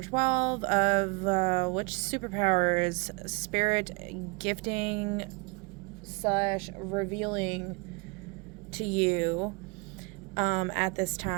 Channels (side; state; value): left; quieter; 29.7 dB